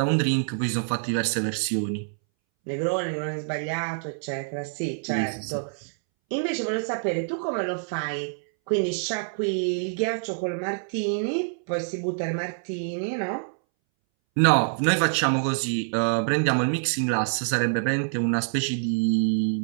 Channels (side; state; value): left; silent; 61 dB below the other